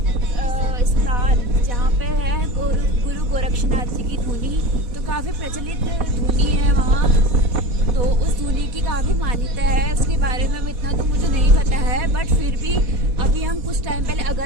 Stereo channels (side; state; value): left; late; 4.1 ms